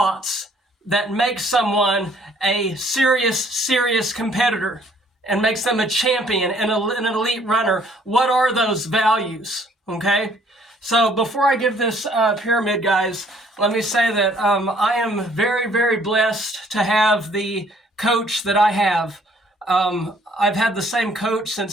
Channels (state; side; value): normal; both; correlation 0.61